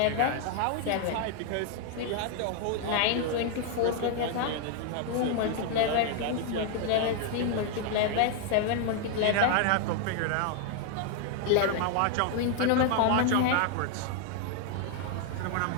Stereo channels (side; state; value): both; different; correlation 0.00